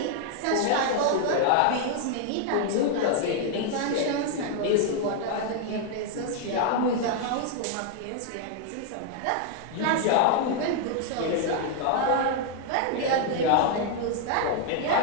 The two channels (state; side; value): different; both; correlation 0.00